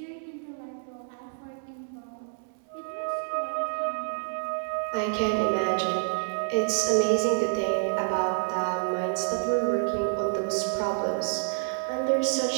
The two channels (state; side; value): silent; left; digital silence